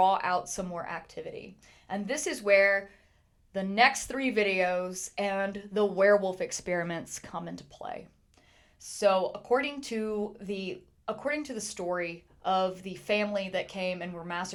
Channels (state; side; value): identical; both; correlation 1.00